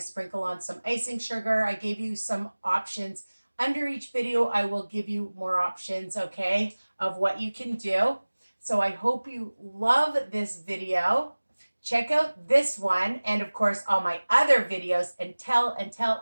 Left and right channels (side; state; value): both; inverted; correlation -1.00